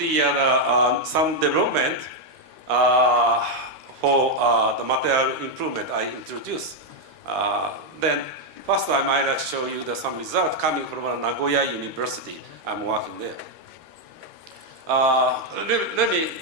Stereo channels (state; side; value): late; left; 13 ms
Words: some development for the material improvement I introduced. Then first time I'd like to show you some result coming from Nagoya University. I'm working there. Let me